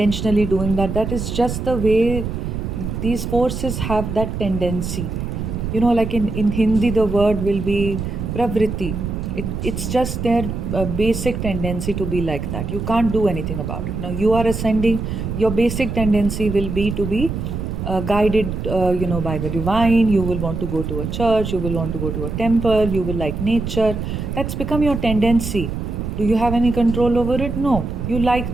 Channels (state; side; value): noise; right; rumble, 4 dB below the sound